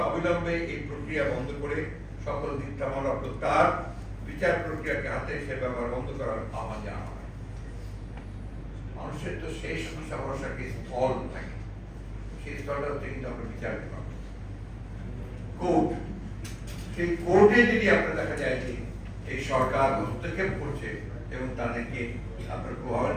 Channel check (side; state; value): both; identical; correlation 1.00